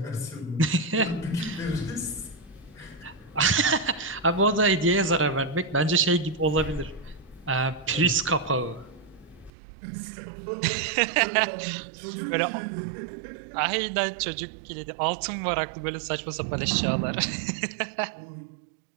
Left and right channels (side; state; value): left; drops out; at 9.5 s